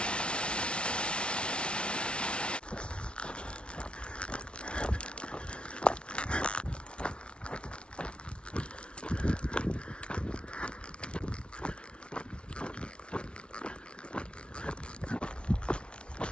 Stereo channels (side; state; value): right; late; 0.058 ms